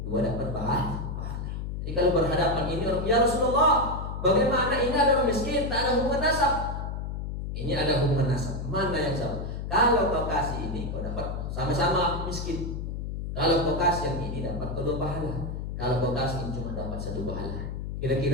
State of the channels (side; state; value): left; noise; hum, 5 dB below the sound